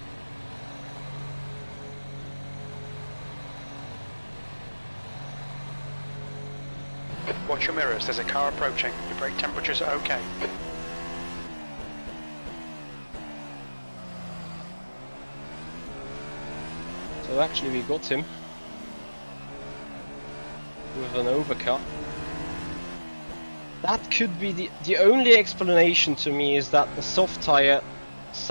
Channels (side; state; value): both; inverted; correlation -1.00